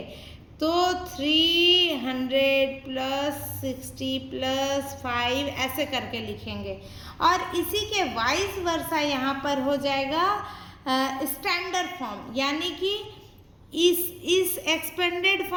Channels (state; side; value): identical; both; correlation 1.00